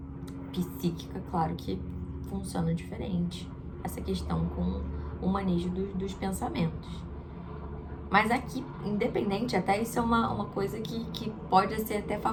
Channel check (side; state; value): both; identical; correlation 1.00